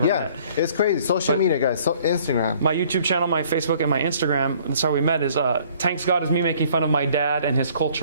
met. It's crazy. Social media, guys. So Instagram. My YouTube channel, my Facebook, and my Instagram, that's how we met, is Thanks God is me making fun of my dad and his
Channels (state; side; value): inverted; both; correlation -0.57